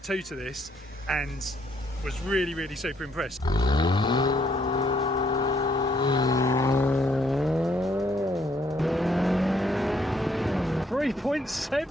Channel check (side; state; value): both; normal; correlation 0.69